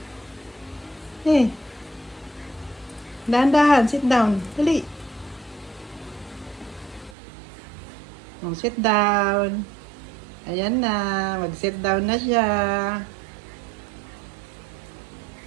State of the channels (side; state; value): left; drops out; at 7.2 s